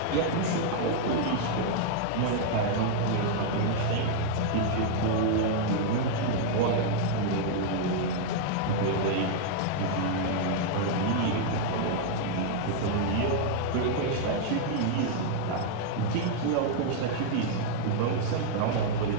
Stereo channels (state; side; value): different; both; correlation -0.01